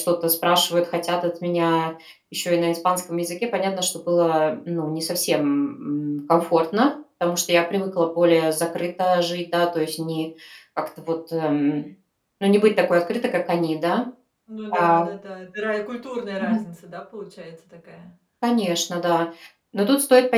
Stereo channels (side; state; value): both; identical; correlation 1.00